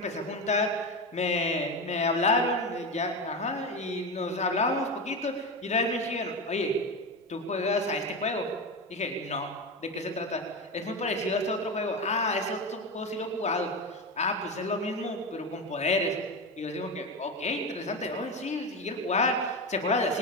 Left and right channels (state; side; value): normal; both; correlation 0.19